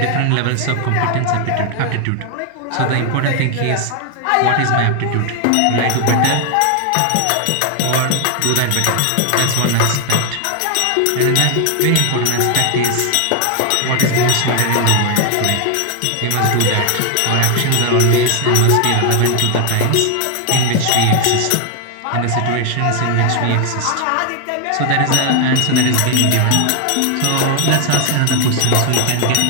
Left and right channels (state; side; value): different; both; correlation 0.00